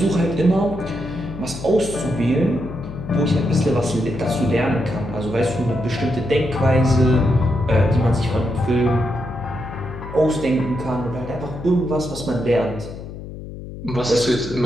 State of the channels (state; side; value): noise; left; hum, 11 dB below the sound